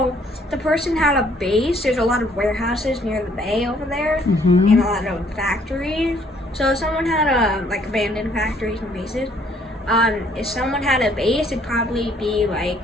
the person had a base. There's a lot of warehouses near the bay over there, and a lot of factories. So if someone had like abandoned factories and bases. If someone had a base, it'd probably be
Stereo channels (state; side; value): normal; both; correlation 0.64